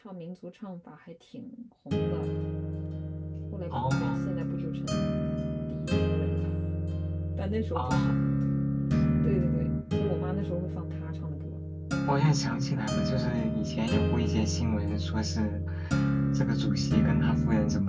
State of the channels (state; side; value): identical; both; correlation 1.00